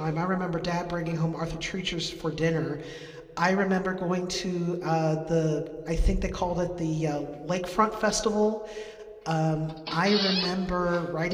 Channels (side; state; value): both; identical; correlation 1.00